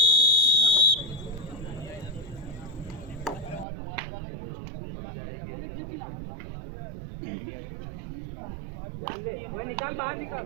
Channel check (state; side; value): drops out; left; at 3.7 s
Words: ध्यान दे, वो निकाल, बाहर निकाल.